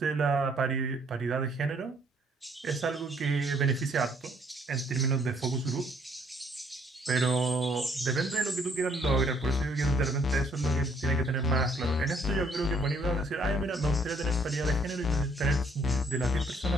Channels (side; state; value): both; normal; correlation 0.65